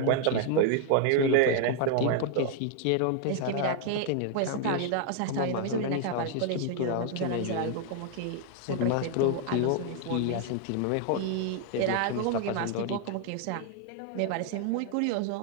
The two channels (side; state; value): both; different; correlation 0.00